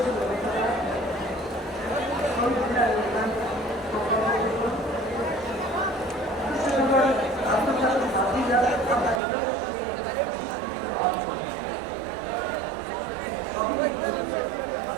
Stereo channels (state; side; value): drops out; left; at 9.2 s